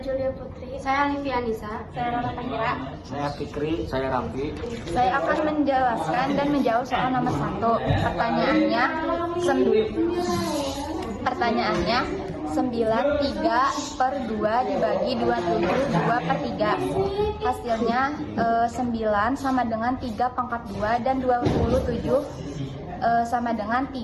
Putri. Saya Livia Anissa. Saya Rara Tahira. Saya Fikri, saya Ramfi. Saya akan menjelaskan dan menjawab soal nomor 1. Pertanyaannya 93/2 dibagi 27 2 per 3. Hasilnya 9 sama dengan 3 pangkat 2 dan 27 sama dengan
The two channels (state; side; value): identical; both; correlation 1.00